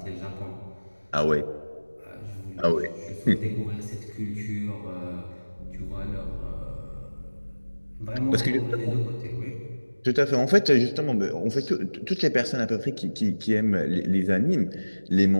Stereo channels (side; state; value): both; inverted; correlation -1.00